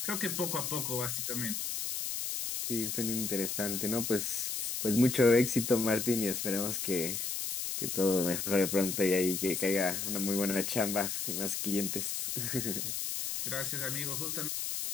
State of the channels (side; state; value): left; noise; hiss, 2 dB below the sound